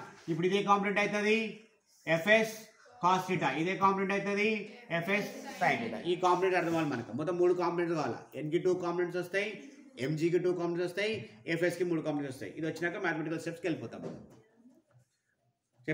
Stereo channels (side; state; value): both; identical; correlation 1.00